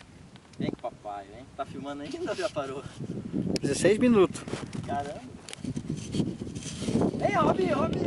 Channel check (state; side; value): identical; both; correlation 1.00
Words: Vem com o papai, vem. Tá filmando ainda ou já parou? 16 minutos. Caramba. Vem, Robinho,